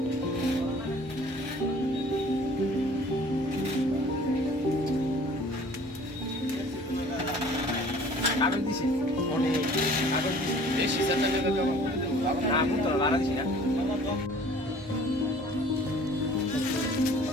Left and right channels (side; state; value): both; normal; correlation 0.50